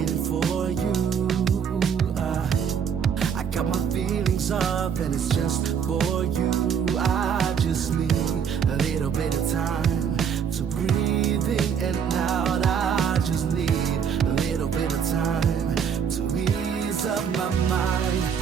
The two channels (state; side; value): quieter; left; 7.4 dB